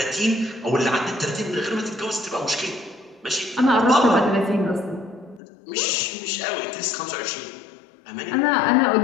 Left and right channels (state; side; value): drops out; right; at 5.4 s